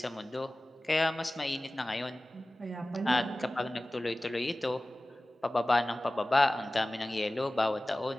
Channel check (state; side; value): normal; both; correlation 0.97